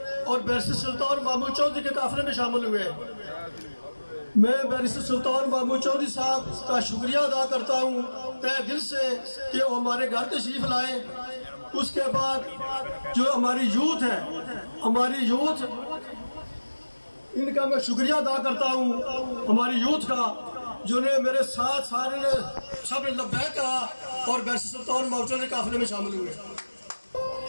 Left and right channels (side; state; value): both; inverted; correlation -1.00